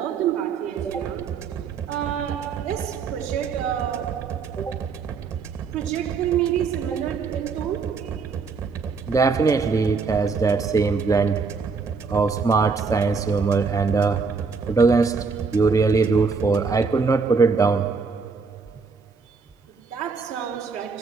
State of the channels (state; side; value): quieter; left; 5.0 dB